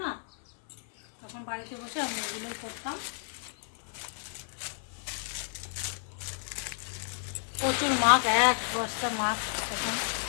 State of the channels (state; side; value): silent; right; 57 dB below the other